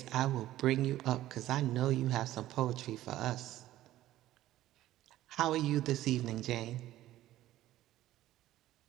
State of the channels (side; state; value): left; quieter; 14.5 dB